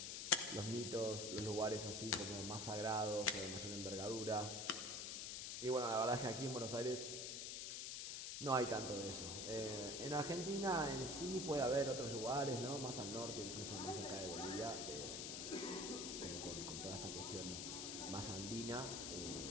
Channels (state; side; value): noise; left; hiss, 4 dB below the sound